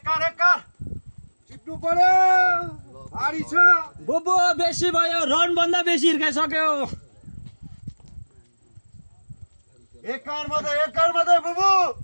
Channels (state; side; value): inverted; both; correlation -1.00